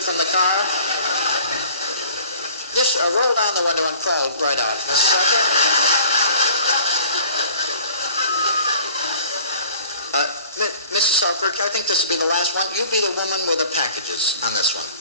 from the car? Just roll down the window and crawl right out, Mrs. Selkirk. Mrs. Selkirk, I think this will be the last one. You be the woman with the packages on this one,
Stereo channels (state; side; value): inverted; both; correlation -0.51